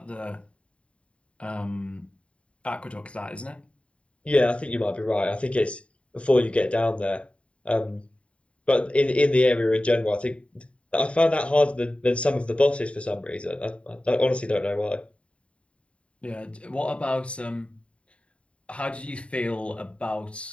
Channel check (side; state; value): right; late; 0.061 ms